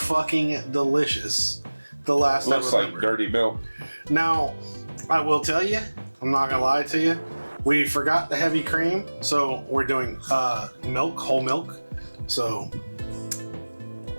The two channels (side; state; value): both; inverted; correlation -1.00